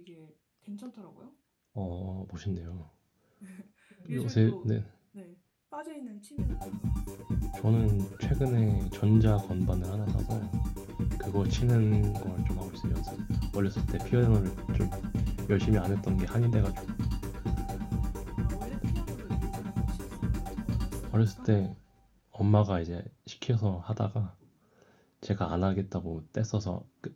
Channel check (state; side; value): identical; both; correlation 1.00